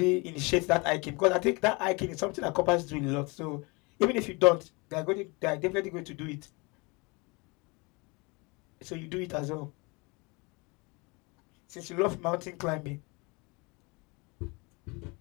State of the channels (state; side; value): quieter; right; 27.7 dB